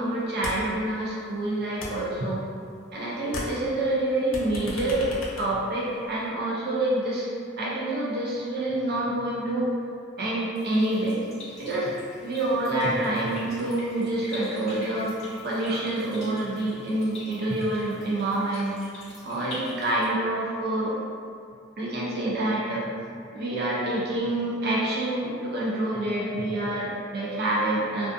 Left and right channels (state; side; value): normal; both; correlation 0.40